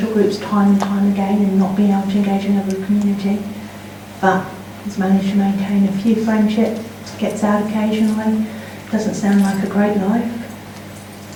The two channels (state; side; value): identical; both; correlation 1.00